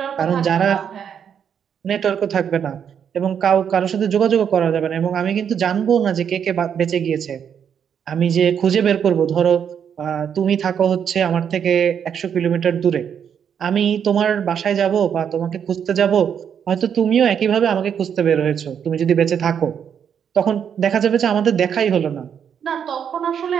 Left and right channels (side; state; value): left; quieter; 8.0 dB